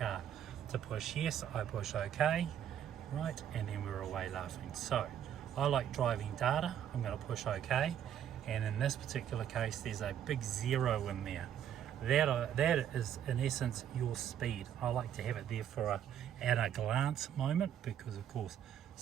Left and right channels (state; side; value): quieter; left; 9.8 dB